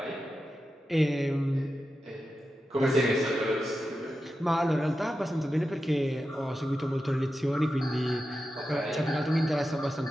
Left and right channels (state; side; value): normal; both; correlation 0.91